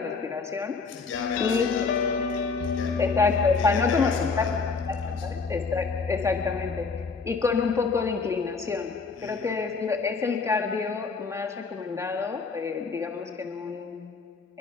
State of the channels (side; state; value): right; quieter; 4.7 dB